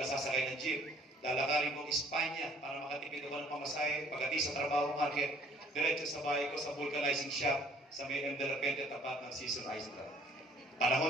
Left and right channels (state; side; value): normal; both; correlation 0.59